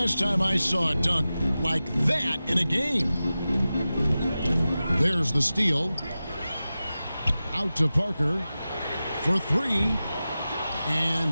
time I saw a dunk like that in a game. There's the steal. Out to Parker for 3.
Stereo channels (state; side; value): inverted; both; correlation -0.94